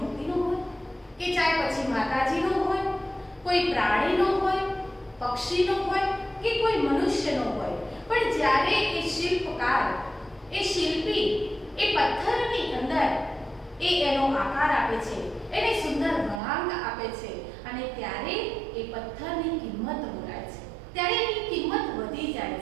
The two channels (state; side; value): drops out; left; at 16.4 s